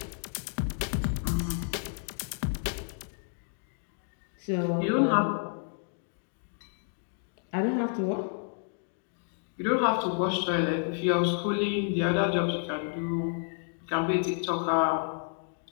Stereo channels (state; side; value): silent; right; 57 dB below the other